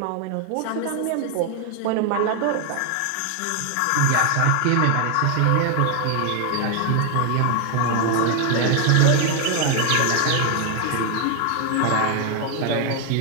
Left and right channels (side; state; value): both; different; correlation 0.00